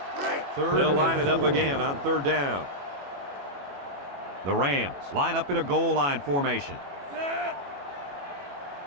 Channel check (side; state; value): left; late; 21 ms